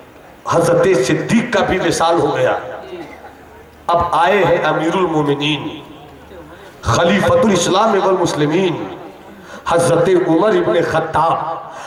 हजरत सिद्दीक का भी विसाल हो गया। अब आए हैं अमीरुल मोमिनीन, खलीफतुल इस्लाम वल मुस्लिमीन, हजरत उमर इब्ने खत्ताब।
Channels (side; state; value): both; identical; correlation 1.00